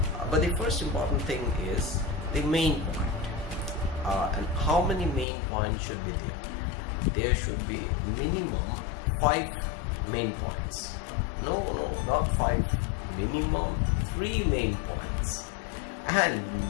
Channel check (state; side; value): drops out; right; at 5.2 s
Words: But the first important thing is the main point. And how many main points should be there? There should be minimum 5 main points. No, not 5. Minimum 3 main points and